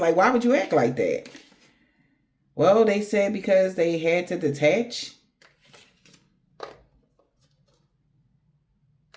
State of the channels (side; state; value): both; identical; correlation 1.00